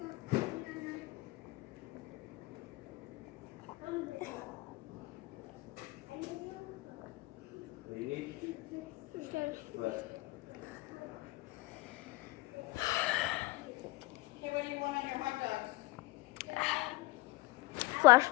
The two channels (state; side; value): quieter; right; 21.5 dB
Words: What do you need? What? Okay, what do you want on your hot dogs? Flash